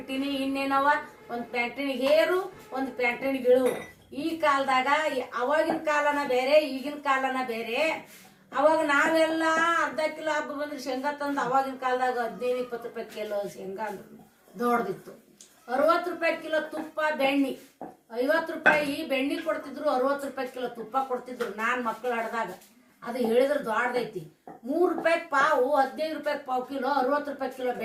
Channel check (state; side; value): identical; both; correlation 1.00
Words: ಇನ್ನೇನವ ಒಂದು ಪ್ಯಾಂಟಿನಿಗೆ ಹೇರು, ಒಂದು ಪ್ಯಾಂಟಿನಿಗೆ ಇಳು. ಈ ಕಾಲದಾಗ ಅವಾಗಿನ ಕಾಲನ ಬೇರೆ, ಈಗಿನ ಕಾಲನ ಬೇರೆ. ಅವಾಗ ನಾವೆಲ್ಲ ಅರ್ಧ ಕಿಲೋ ಹಬ್ಬ ಬಂದ್ರೆ ಶೇಂಗಾ ತಂದು ಅವಾಗಿನ ಕಾಲದಾಗ 15-20 ರೂಪಾಯಿ ಕಿಲೋ ಶೇಂಗಾ ಅಂದ್ರೆ ದೊಡ್ಡದಿತ್ತು. 60 ರೂಪಾಯಿ ಕಿಲೋ ತುಪ್ಪ, ಬೆಣ್ಣೆ 50 ರೂಪಾಯಿ ಬೆಣ್ಣೆ ಕೊಡ್ತಿದ್ರು, 60 ರೂಪಾಯಿ ಕಿಲೋ ತುಪ್ಪ ಕೊಡ್ತಿದ್ರು. ನಾನು ಮಕ್ಕಳು ಆಡ್ದಾಗ ಅದು ಹೇಳಿದ್ರೆ ದೊಡ್ಡದೈತಿ. 3 ರೂಪಾಯಿ ಪಾವು, 15 ರೂಪಾಯಿ ಪಾವು ಕಿಲೋ, 60 ರೂಪಾಯಿ ಕಿಲೋ